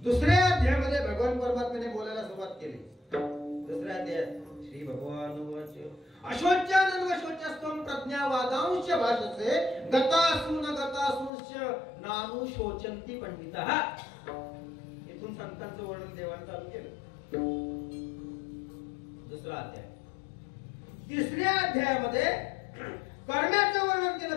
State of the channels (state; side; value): drops out; right; at 11.3 s